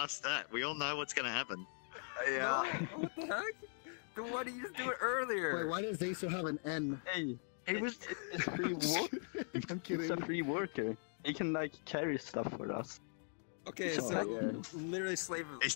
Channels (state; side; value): silent; right; 51 dB below the other